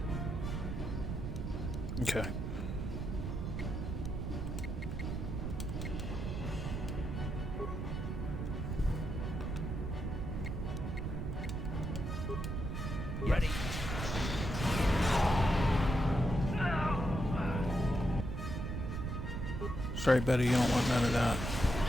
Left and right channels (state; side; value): noise; right; rumble, 3 dB below the sound